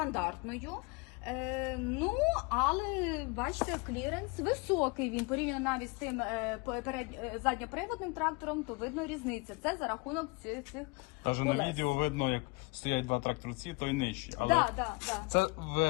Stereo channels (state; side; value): quieter; right; 27.2 dB